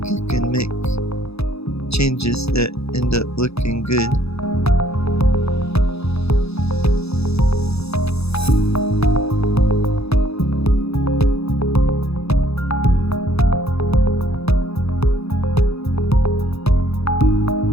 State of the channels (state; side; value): late; right; 0.79 ms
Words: you can make changes that end up looking good.